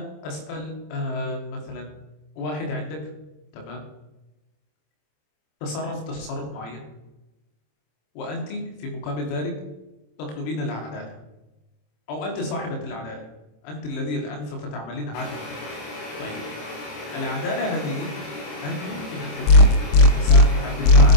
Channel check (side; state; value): right; late; 27 ms